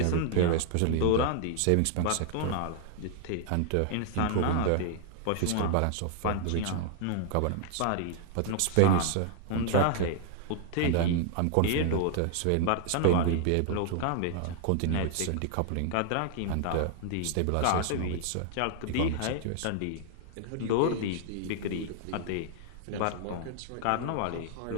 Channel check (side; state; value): both; different; correlation -0.01